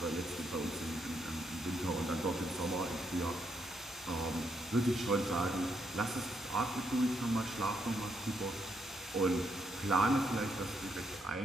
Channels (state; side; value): normal; both; correlation 0.77